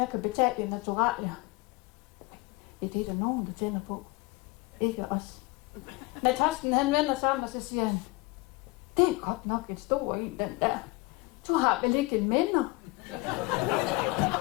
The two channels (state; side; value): quieter; right; 23.4 dB